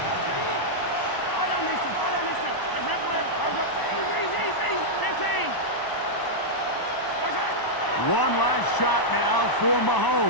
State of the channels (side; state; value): right; late; 1.0 ms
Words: One last shot now for